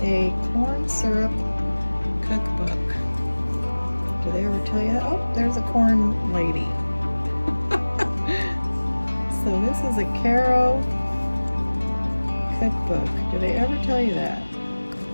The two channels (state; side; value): inverted; both; correlation -1.00